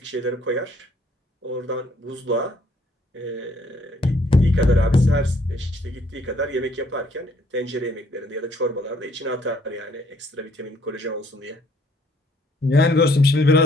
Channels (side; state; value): both; normal; correlation 0.65